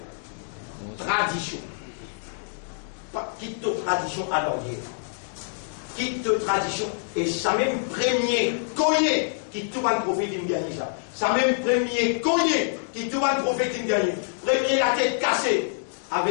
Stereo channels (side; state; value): right; silent; digital silence